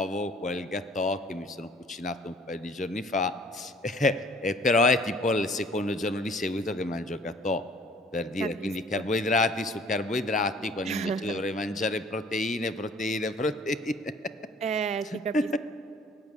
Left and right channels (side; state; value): both; normal; correlation 0.54